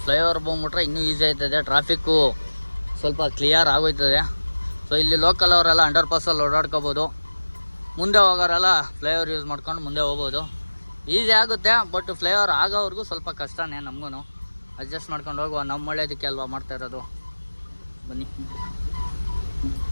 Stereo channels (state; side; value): inverted; both; correlation -1.00